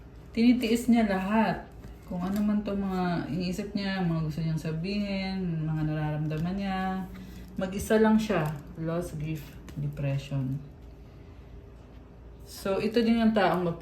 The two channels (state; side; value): identical; both; correlation 1.00